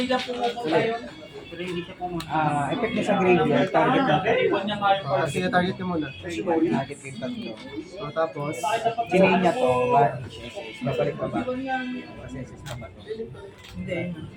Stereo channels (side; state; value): both; identical; correlation 1.00